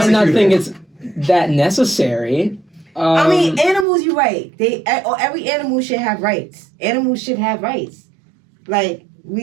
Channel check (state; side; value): drops out; left; at 3.9 s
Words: not think it's that necessary. I mean, animals, you're right. Every animal should have rights. Animals should have rights. Like,